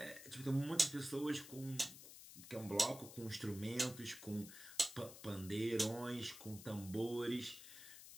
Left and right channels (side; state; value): left; noise; hiss, 14 dB below the sound